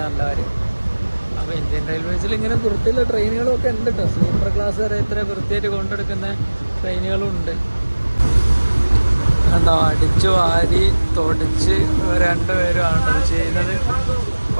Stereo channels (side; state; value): both; inverted; correlation -1.00